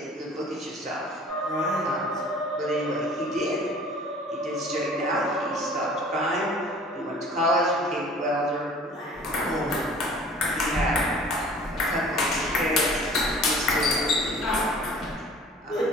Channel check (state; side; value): normal; both; correlation 0.48